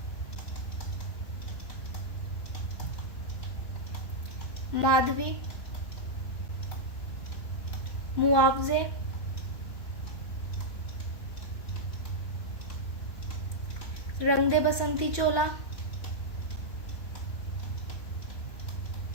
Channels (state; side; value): late; right; 2.9 ms